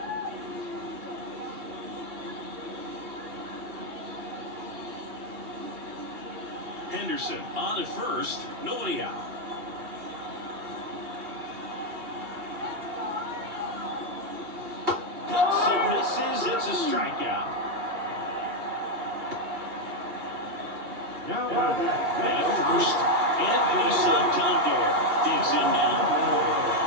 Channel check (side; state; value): left; late; 2.8 ms